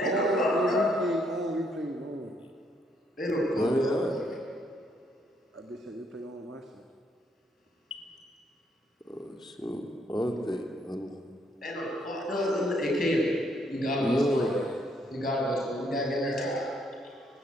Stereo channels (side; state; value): both; normal; correlation 0.72